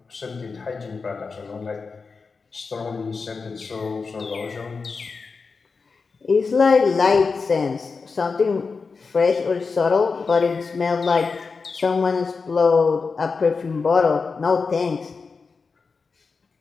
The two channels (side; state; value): right; quieter; 4.7 dB